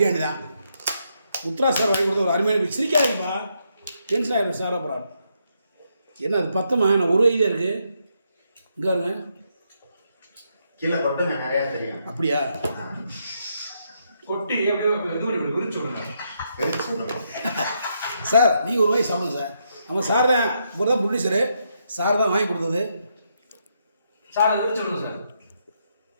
தான். முத்ரா சார் வாங்கி கொடுத்த ஒரு அருமையான சிரிக்காதுப்பா, டென்ஷன் ஆகிடும் சார். அப்புறம் என்ன அது பத்தமா, நான் ஒரு ஐடியா இருக்குது இங்கே வருங்க கீழே கொட்டுங்க, நிறையா தெரியும். அப்படியா? கொட்டி எப்படியோ விரிச்சு சார் நீங்கள் ஒரு வாய் சாப்பிடுங்க சார். நம்ம சார் தான், இவர் தான் ப்ரொடியூசரு, சார் தான் வாங்கி கொடுத்தது. சார் விரிச்சு விடுங்க சார்.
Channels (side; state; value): both; inverted; correlation -0.78